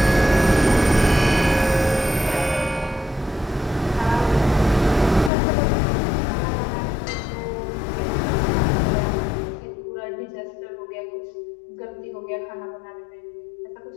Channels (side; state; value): right; drops out; at 5.3 s